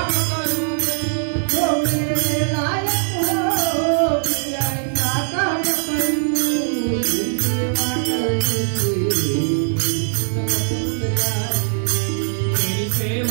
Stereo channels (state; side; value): silent; left; digital silence